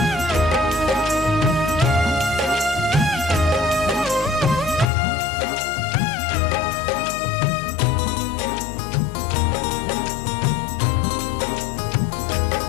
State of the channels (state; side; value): drops out; right; at 4.9 s